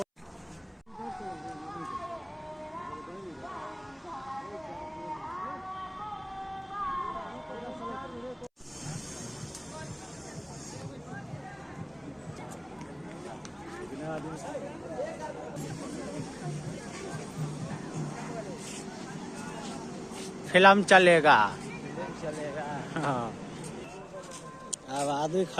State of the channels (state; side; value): identical; both; correlation 1.00